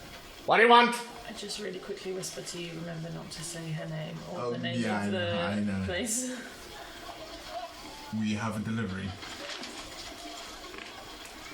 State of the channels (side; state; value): both; identical; correlation 1.00